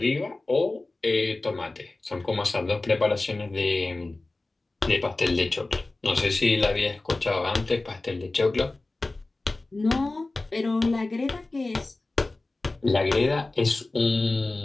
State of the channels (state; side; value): quieter; right; 3.1 dB